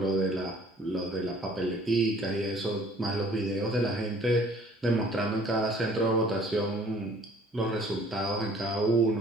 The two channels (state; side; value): normal; both; correlation 0.55